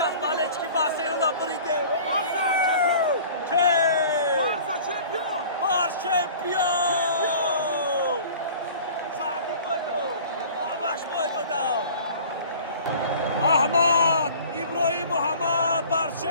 Barcelona beride Barça şampiyon. Barça şampiyon. Bar Champion Sadi boydu Amash boydu da Ahmad İbrahim Muhammed Bar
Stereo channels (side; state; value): both; inverted; correlation -0.45